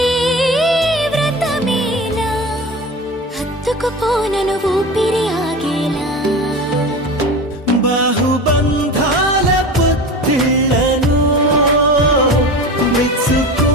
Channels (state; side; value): normal; both; correlation 0.30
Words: వ్రతమేలా హత్తుకుపోనను ఊపిరి ఆగేలా బాహుబంధాల పొత్తిళ్లను